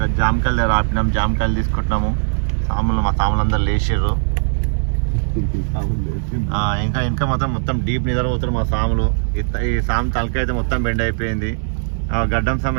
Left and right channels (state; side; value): silent; left; 67 dB below the other